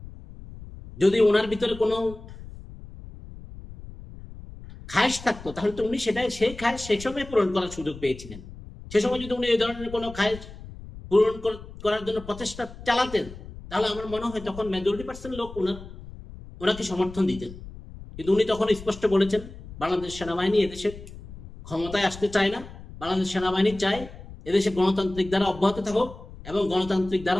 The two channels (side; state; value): left; noise; rumble, 15 dB below the sound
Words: যদি ওনার ভিতরে কোনো খায়েশ থাকতো তাহলে তো উনি সেই খায়েশ সেই সময় পূরণ করার সুযোগ পেয়েছিলেন। সে সময় যদি উনি এই ধরনের কোনো খায়েশ পূরণ করার জন্য প্রচেষ্টা চালাতেন তাহলে আমার মনে হয় তখন মেজরিটি% লোক ওনাকে সমর্থন দিতেন। কিন্তু উনি তখন স্পষ্ট বলেছেন বাংলাদেশ সেনাবাহিনী এদেশে ক্ষমতায় আসতে চায় না, বাংলাদেশ সেনাবাহিনী চায় এদেশে গণতান্ত্রিক দ্বারা অব্যাহত থাকুক, এবং গণতান্ত্রিক